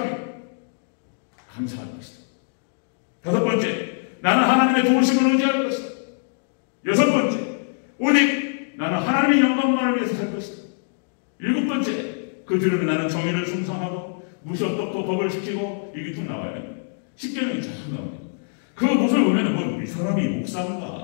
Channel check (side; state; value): right; silent; digital silence